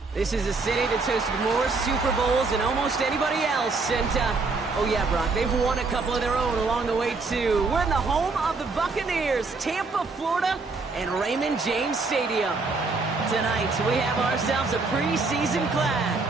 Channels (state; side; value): quieter; left; 4.0 dB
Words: This is a city that's hosted more Super Bowls than almost anybody else. And, oh yeah, Brock, they've won a couple of their own along the way, too. We're in the home of the Buccaneers, Tampa, Florida, and Raymond James Stadium. Tonight, we have ourselves a preseason clash